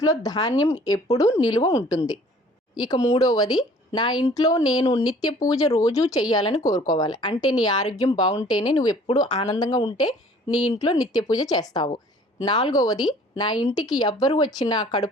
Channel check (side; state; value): both; normal; correlation 0.53